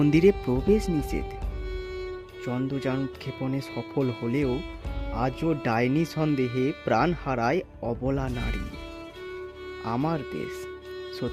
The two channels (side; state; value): both; identical; correlation 1.00